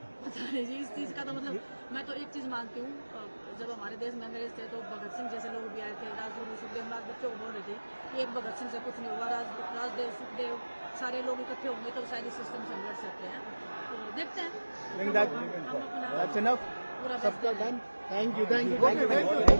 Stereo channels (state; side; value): inverted; both; correlation -1.00